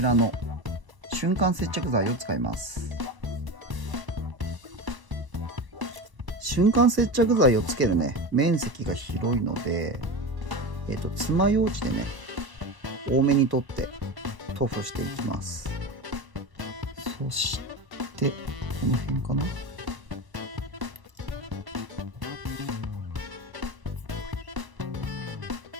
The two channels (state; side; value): late; left; 1.0 ms